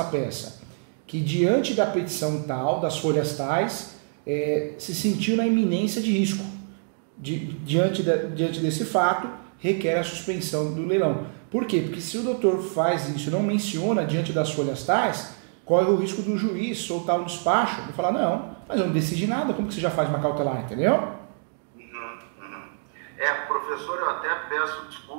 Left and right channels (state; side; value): silent; left; 61 dB below the other